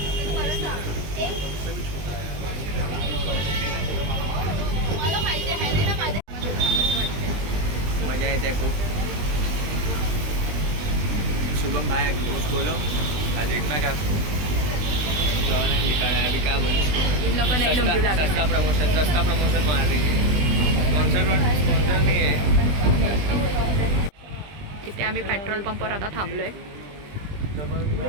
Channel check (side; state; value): left; late; 20 ms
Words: मजा येते खूप. शुभम भाई कुछ बोलो. देखना क्या निकाला है अभी, क्या बोलो. इन लोगों ने लुंगी लगा सस्ता प्रमोशन मार रही है. स्पॉन्सर नहीं है. तिथे आम्ही पेट्रोल पंपवर आता थांबलोय.